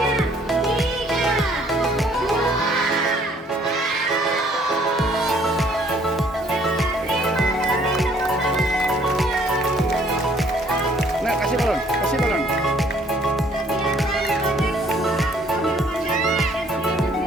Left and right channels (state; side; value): normal; both; correlation 0.61